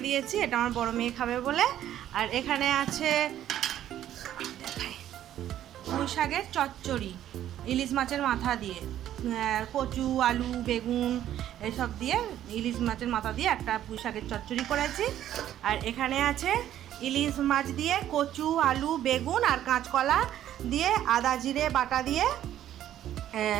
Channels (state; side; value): quieter; left; 11.8 dB